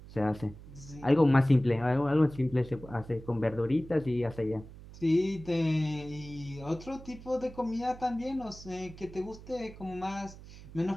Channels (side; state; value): right; noise; hum, 17 dB below the sound